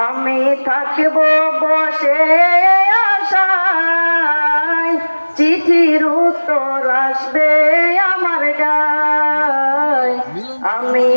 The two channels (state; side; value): inverted; both; correlation -1.00